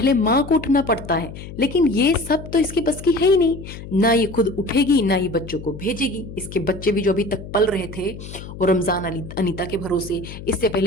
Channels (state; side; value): noise; left; hum, 12 dB below the sound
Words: माँ को उठना पड़ता है, लेकिन ये सब तो इसकी बस की है ही नहीं। ना ये खुद उठेगी, ना ये बच्चों को भेजेगी। इसके बच्चे भी जो अभी तक पल रहे थे वो रमजान अनीता के भरोसे, इससे